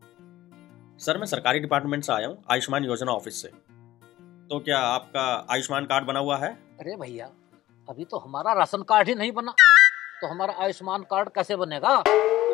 सर मैं सरकारी डिपार्टमेंट से आया हूँ, आयुष्मान योजना ऑफिस से। तो क्या आपका आयुष्मान कार्ड बना हुआ है? अरे भैया, अभी तो हमारा राशन कार्ड ही नहीं बना, तो हमारा आयुष्मान कार्ड कैसे बनेगा?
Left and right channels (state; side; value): quieter; right; 15.2 dB